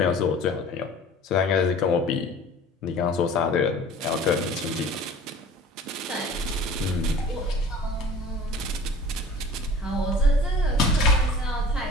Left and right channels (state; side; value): normal; both; correlation 0.44